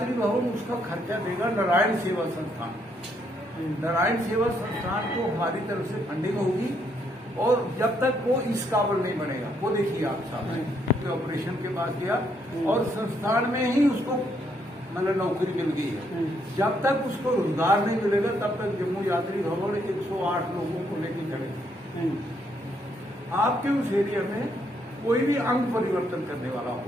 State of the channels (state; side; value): normal; both; correlation 0.73